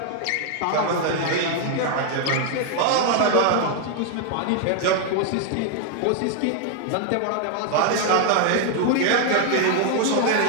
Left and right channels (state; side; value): different; both; correlation 0.00